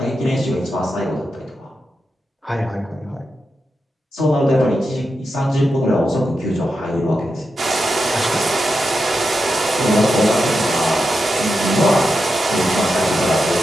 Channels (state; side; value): normal; both; correlation 0.88